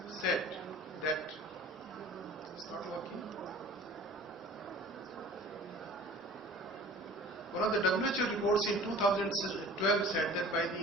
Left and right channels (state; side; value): normal; both; correlation 0.44